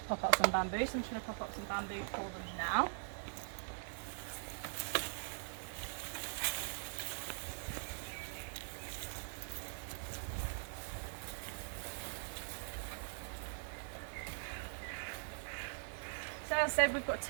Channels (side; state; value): left; silent; digital silence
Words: pop up some bamboo. So I'm just going to pop up some bamboo for them now. So as I said, we've got